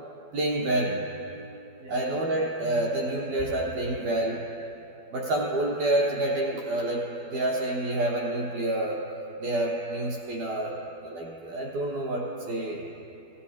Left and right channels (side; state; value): left; late; 12 ms